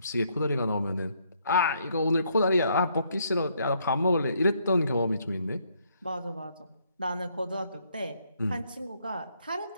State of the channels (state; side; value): inverted; both; correlation -0.71